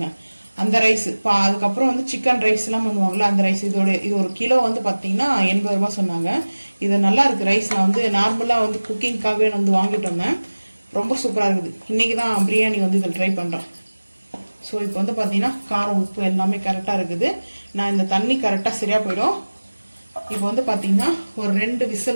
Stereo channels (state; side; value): inverted; both; correlation -1.00